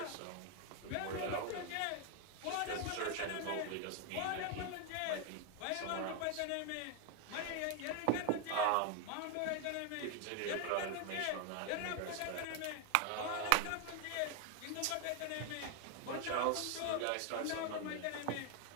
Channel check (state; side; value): different; both; correlation 0.01